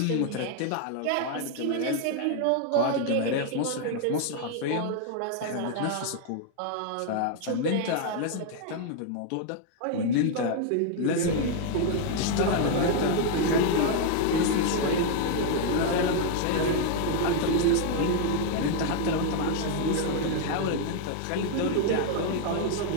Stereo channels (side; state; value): both; different; correlation 0.00